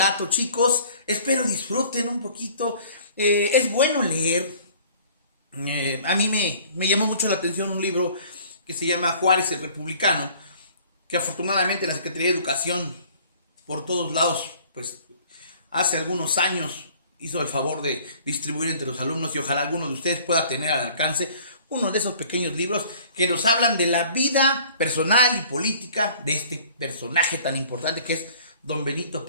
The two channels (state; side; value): inverted; both; correlation -0.52